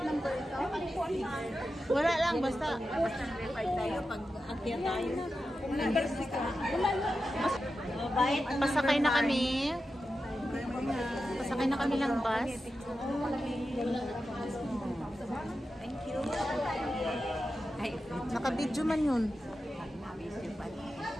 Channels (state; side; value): normal; both; correlation 0.91